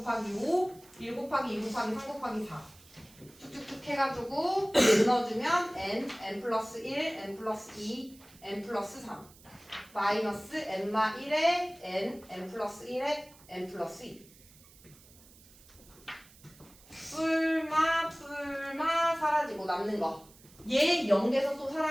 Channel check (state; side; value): noise; right; hiss, 24 dB below the sound